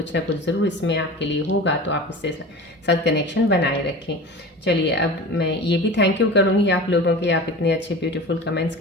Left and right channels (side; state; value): both; normal; correlation 0.34